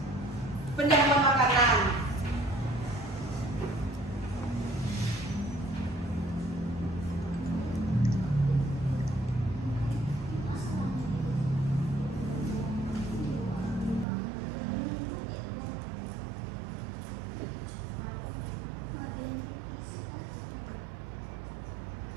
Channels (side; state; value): left; drops out; at 14.1 s